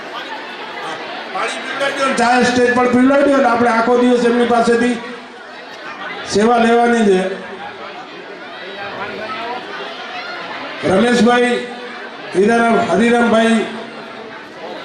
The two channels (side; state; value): both; identical; correlation 1.00